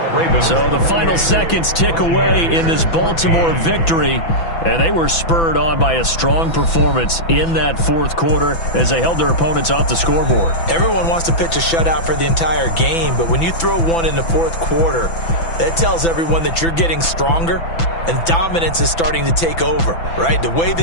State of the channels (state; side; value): late; right; 6.0 ms